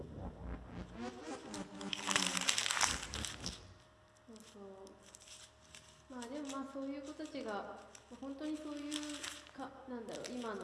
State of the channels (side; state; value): both; identical; correlation 1.00